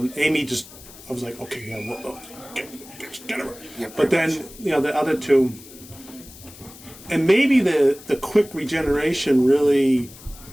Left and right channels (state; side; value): noise; left; hiss, 19 dB below the sound